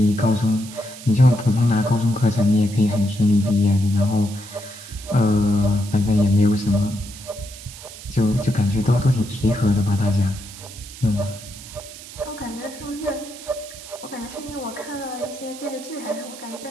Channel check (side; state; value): right; noise; hiss, 15 dB below the sound